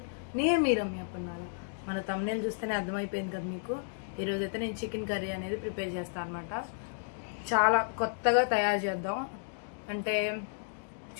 నేను మీ రమ్య పన్నాల. మన thumbnail చూస్తేనే అర్థమైపోయింది కదా మీకు. ఈ రోజు అయితే నేను చికెన్ కర్రీ అనేది ప్రిపేర్ చేస్తాను అన్నమాట. చాలా కొత్తగా తయారు చేద్దాం. అంటే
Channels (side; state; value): right; silent; digital silence